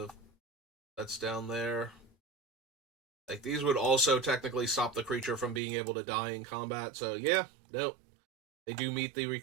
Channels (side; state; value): left; drops out; at 5.6 s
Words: that's down there. Like, these would also technically stop the creature from being able to die in combat. So yeah, no, they do meet the